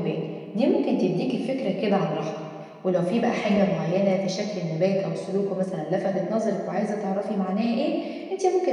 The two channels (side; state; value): both; identical; correlation 1.00